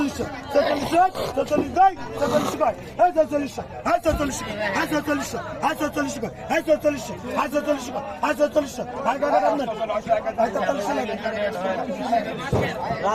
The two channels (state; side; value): identical; both; correlation 1.00